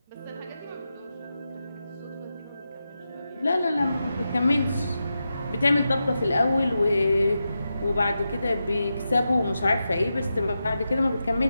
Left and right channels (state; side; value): inverted; both; correlation -0.89